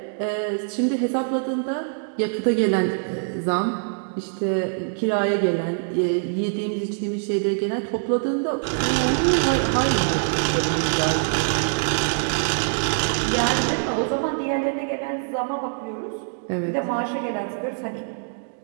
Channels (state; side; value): silent; left; digital silence